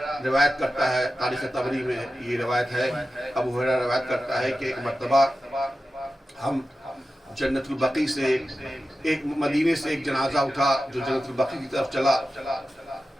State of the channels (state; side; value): normal; both; correlation 0.93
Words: روایت کرتا ہے، تاریخ طبری میں یہ روایت ہے، ابو ہریرہ روایت کرتا ہے کہ ایک مرتبہ ہم جنت البقیع سے ایک مدینے سے ایک جنازہ اٹھا جو جنت البقیع کی طرف چلا.